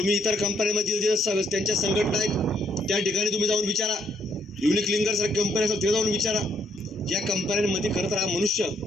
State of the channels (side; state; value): both; normal; correlation 0.70